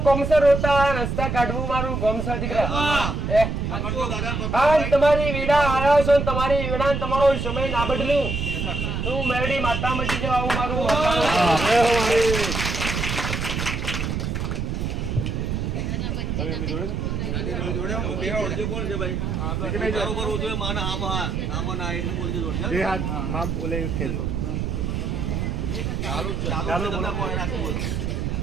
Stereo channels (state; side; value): noise; right; rumble, 2 dB below the sound